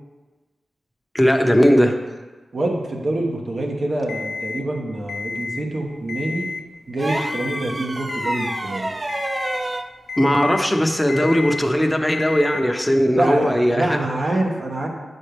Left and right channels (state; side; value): normal; both; correlation 0.96